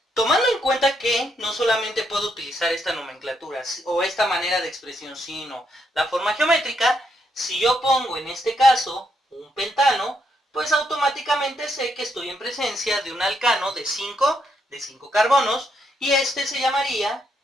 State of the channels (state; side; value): normal; both; correlation 0.77